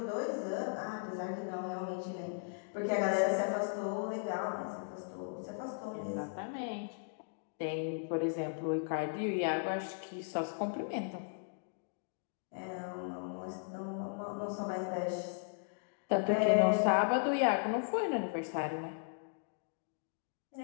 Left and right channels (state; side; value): silent; right; digital silence